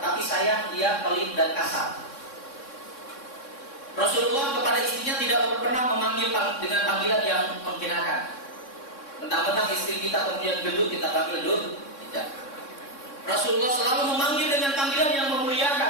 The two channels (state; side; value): late; right; 3.6 ms